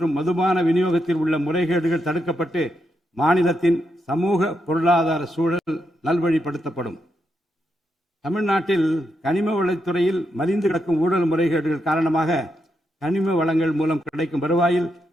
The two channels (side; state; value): both; normal; correlation 0.83